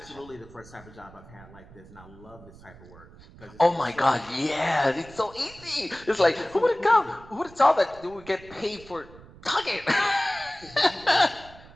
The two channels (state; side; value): noise; right; rumble, 21 dB below the sound